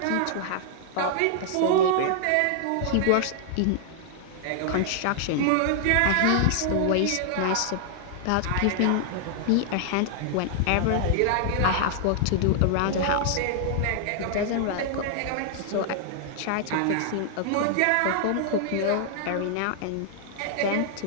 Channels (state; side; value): different; both; correlation -0.01